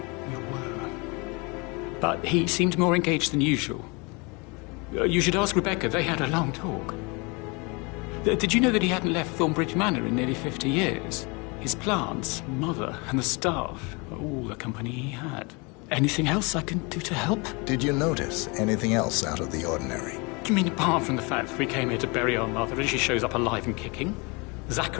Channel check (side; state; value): right; quieter; 29.2 dB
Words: We were. But he seemed more engaged than usual. You should ask Rebecca. They had a long talk. Did you know that he hadn't left Thornbridge Manor in nearly 50 years? His plants, Mother, and the staff are all the company he had. Anything else I can do to help? Did you notice anything else out of the ordinary? You mean apart from the fact that we came here to bury our mother and she shows up alive and kicking?